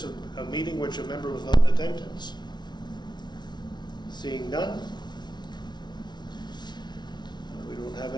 of a meeting which a member was not in attendance. Seeing none. We don't have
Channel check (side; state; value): right; late; 0.20 ms